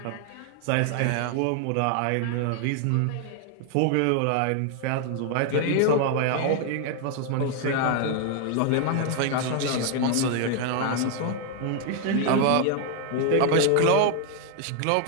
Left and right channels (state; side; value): different; both; correlation 0.00